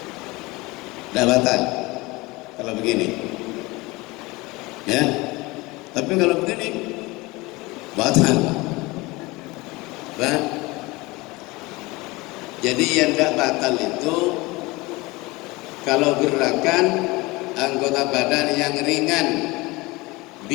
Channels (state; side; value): quieter; right; 22.7 dB